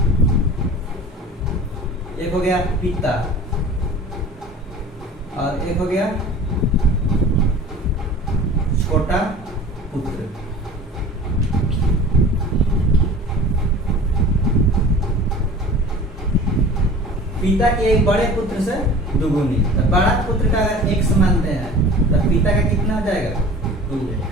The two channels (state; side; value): normal; both; correlation 0.41